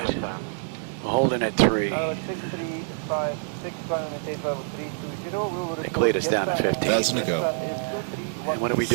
We're holding at 3. They cleared us down to 15. Doesn't it go? And what are we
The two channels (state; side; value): silent; left; digital silence